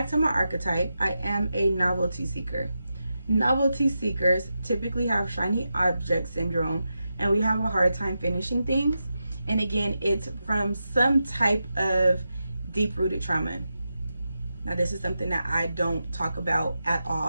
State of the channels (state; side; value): inverted; both; correlation -0.89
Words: to my archetype, I am a novelty seeker. Novelty seekers typically have shiny object syndrome, and we have a hard time finishing things. And again, it's from some type of deep-rooted trauma. Now, this is something that I don't talk about at